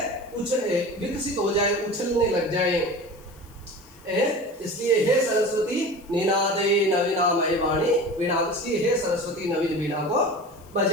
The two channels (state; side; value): noise; left; hiss, 27 dB below the sound